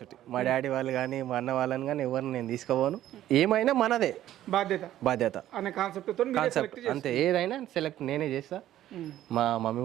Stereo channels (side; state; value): left; quieter; 12.9 dB